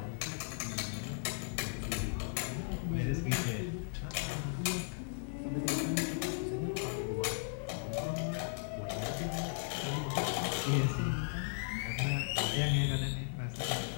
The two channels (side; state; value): right; silent; digital silence